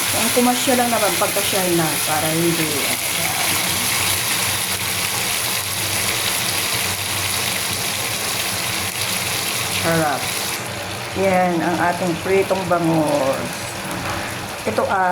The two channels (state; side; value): identical; both; correlation 1.00